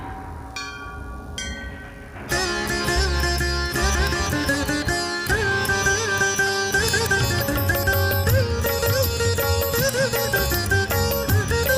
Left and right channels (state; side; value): identical; both; correlation 1.00